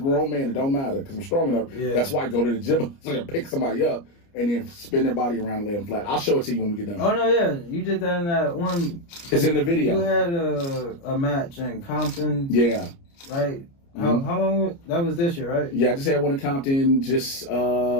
man, it don't matter because I'm strong enough. Yeah. That's why I go to the gym so I can pick somebody up and then spin their body around and lay them flat. I'll show it to you when we get done. Oh, no, yeah. You did that in that one. It's in the video. You had a match in Compton. Yeah. Right? How long? That was this year, right? Yeah, I just had one in Compton just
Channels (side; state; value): right; late; 29 ms